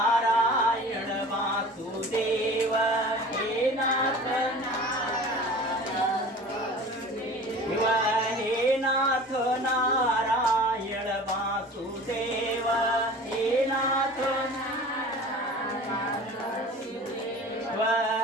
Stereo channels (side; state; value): both; normal; correlation 0.41